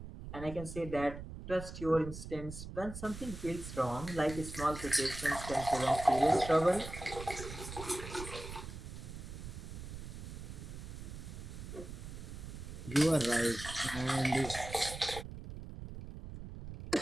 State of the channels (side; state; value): right; noise; rumble, 10 dB below the sound